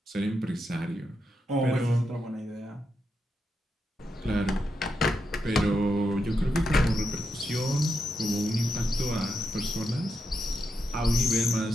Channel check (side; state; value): both; normal; correlation 0.84